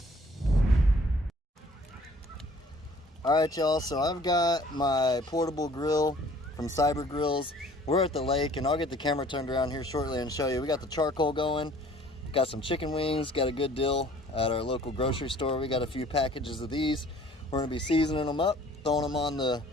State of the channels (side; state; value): both; normal; correlation 0.54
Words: Alright y'all, so I've got my portable grill from Cyber Grills. We're at the lake and I'll get the camera turned around here shortly and show you. We got the charcoal going, got some chicken wings, got a good deal at our local grocery store. We got a few packages of these. We're gonna be seasoning them up, throwing them on the